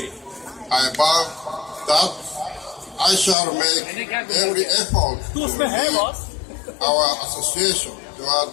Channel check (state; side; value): drops out; right; at 3.4 s